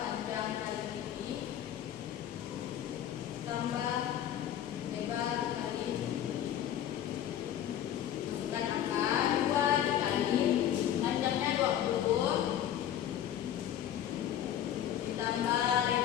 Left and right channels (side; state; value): right; quieter; 10.8 dB